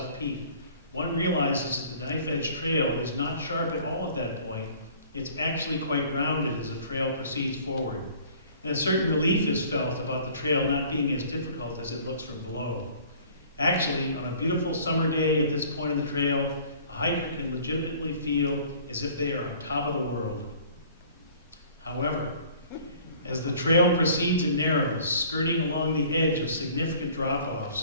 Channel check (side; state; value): both; inverted; correlation -0.51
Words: Peak, one realizes that the Knife Edge Trail is not sharp at all at that point. It's actually quite rounded as the trail proceeds forward. And a certain relief is felt about the trail not being as difficult as it looks from below. Actually, on a beautiful summer day at this point in the trail, a hiker can legitimately feel as if they are on top of the world. However, as the trail proceeds and narrows, skirting along the edge of significant